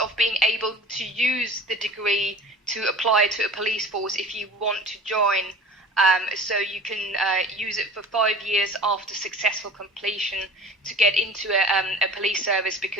of being able to use the degree to apply to a police force if you want to join. So you can use it for 5 years after successful completion to get into a police service,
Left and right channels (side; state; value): both; normal; correlation 0.40